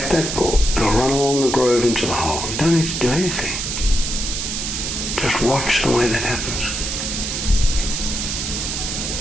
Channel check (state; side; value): noise; right; hiss, 3 dB below the sound